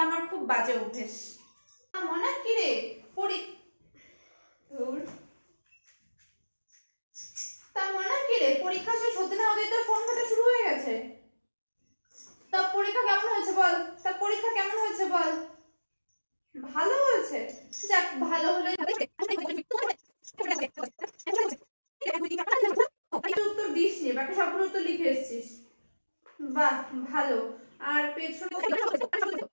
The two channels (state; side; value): inverted; both; correlation -1.00